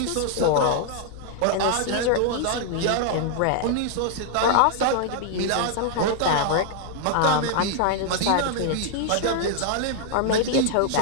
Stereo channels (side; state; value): both; different; correlation 0.00